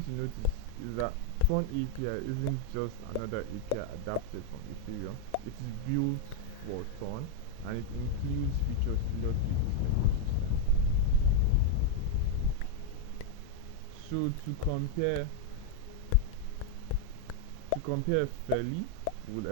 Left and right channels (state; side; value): different; both; correlation 0.00